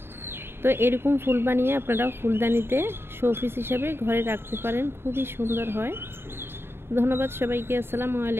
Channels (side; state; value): left; late; 0.11 ms